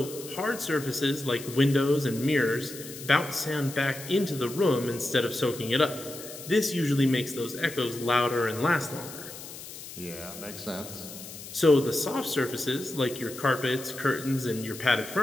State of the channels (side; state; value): left; noise; hiss, 13 dB below the sound